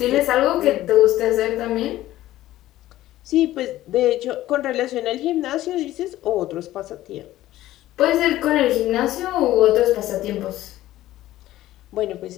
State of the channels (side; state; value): right; quieter; 14.9 dB